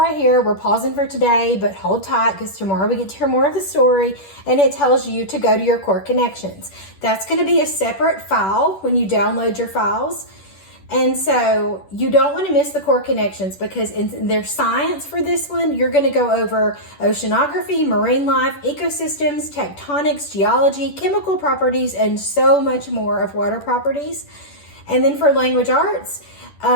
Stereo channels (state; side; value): late; right; 10 ms